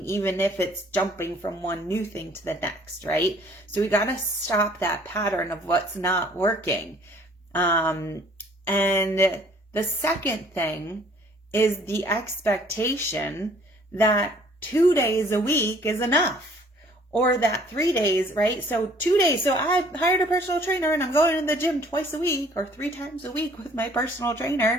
even if it's jumping from one new thing to the next, right? So we got to stop that pattern of what's not working. And the second thing is the expectation that 2 days a week is enough, or that 3 days, right? So 2 days. So I hired a personal trainer and I'm going to the gym twice a week or 3 times a week with my personal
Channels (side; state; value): both; normal; correlation 0.57